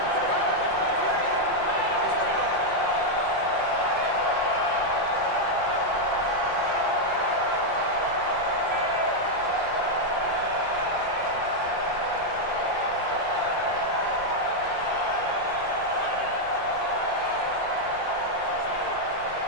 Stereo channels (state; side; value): late; right; 5.7 ms